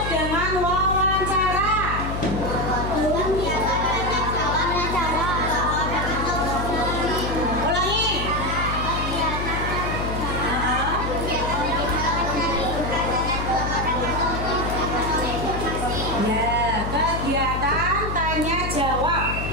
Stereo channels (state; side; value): noise; left; hum, 4 dB below the sound